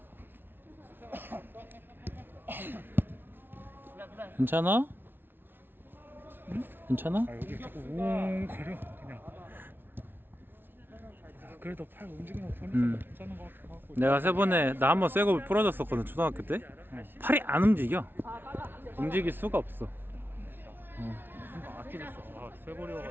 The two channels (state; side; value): late; left; 0.10 ms